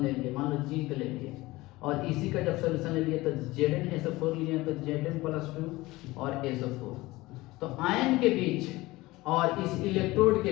लिए, मान लो जिंक ले लिए, और इसी का जब सोल्यूशन ले लिए तो Zn लिए तो Zn+2 और SO4। तो आयन के बीच और इस इलेक्ट्रोड के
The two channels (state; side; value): quieter; right; 19.8 dB